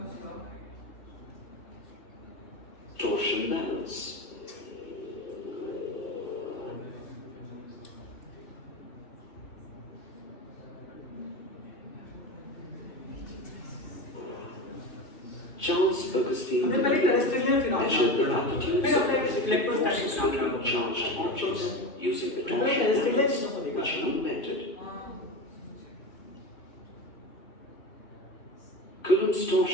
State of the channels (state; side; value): late; right; 2.6 ms